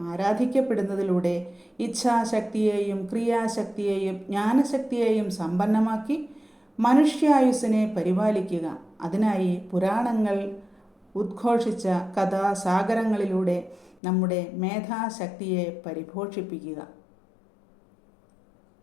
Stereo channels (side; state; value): right; drops out; at 14.0 s